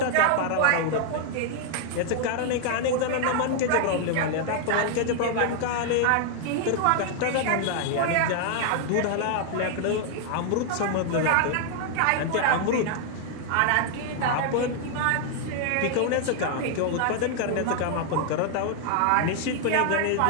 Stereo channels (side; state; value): both; different; correlation 0.00